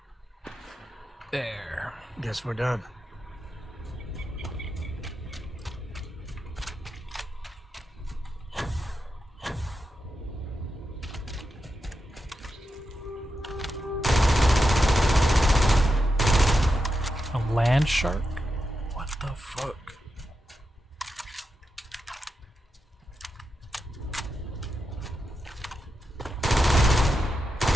There. Guess we're done. A land shark? What the fuck?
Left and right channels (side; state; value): both; normal; correlation 0.88